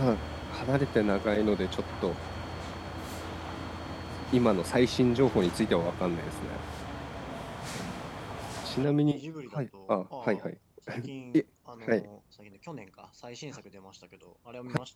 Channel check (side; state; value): both; identical; correlation 1.00